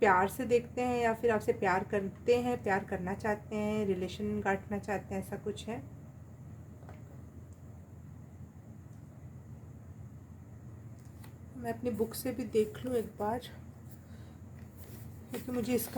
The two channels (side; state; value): both; identical; correlation 1.00